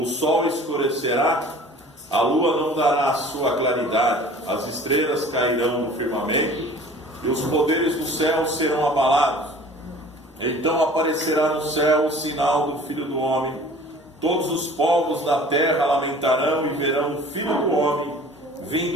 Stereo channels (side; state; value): both; normal; correlation 0.46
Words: sol escurecerá, a lua não dará a sua claridade, as estrelas cairão no firmamento e os poderes do céu serão abalados. Então aparecerá no céu o sinal do Filho do Homem. Todos os povos da terra lamentarão e verão o Filho do Homem